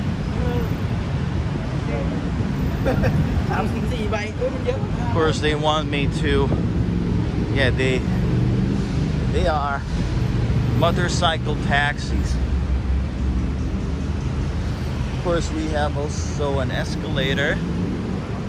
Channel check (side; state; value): both; identical; correlation 1.00